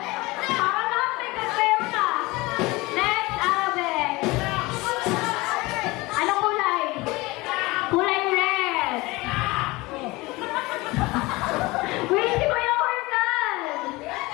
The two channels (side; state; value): right; quieter; 22.0 dB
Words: Para lahat may kasero na. Next, Alvin. Anong kulay? Kulay red. Wait, si Kuya Organ!